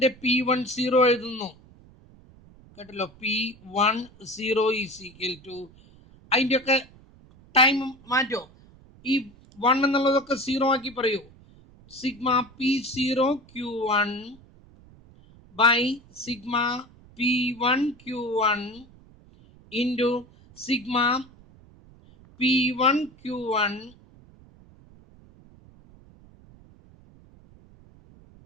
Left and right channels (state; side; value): noise; right; rumble, 25 dB below the sound